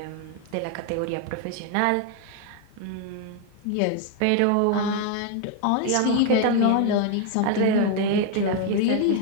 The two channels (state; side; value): different; both; correlation 0.00